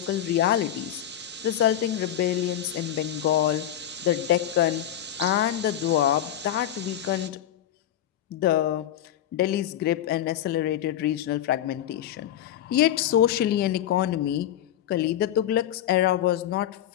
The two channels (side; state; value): right; quieter; 11.3 dB